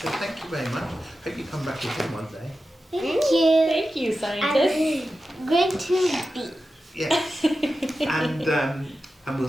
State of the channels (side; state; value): both; normal; correlation 0.92